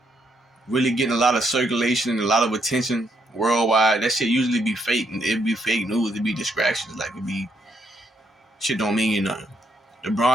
really getting a lot of circulation and a lot of attention worldwide, that shit usually be fake. It'd be fake news. It'd be distractions. Like, it'd be shit don't mean nothing.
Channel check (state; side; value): normal; both; correlation 0.75